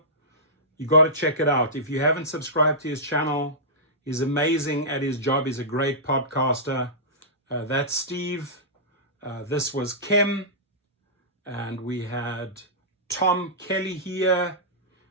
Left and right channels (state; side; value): normal; both; correlation -0.16